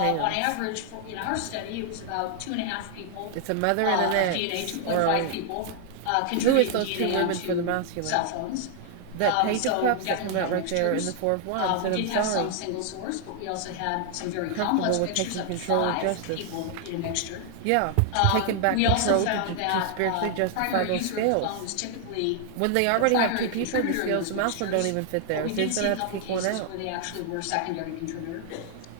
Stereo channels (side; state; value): both; different; correlation 0.00